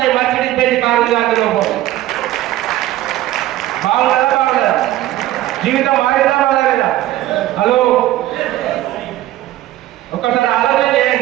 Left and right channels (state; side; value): quieter; left; 14.9 dB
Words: మర్సిడీస్ బెంజ్ కారు ఉంది. అందులో బాగుందా? జీవితం మారిందా మారలేదా? హలో, ఒకసారి ఆలోచన